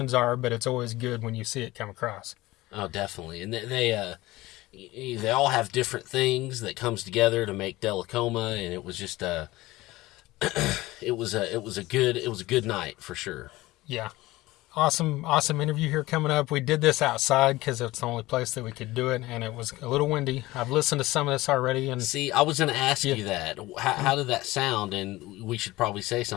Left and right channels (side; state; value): right; quieter; 18.8 dB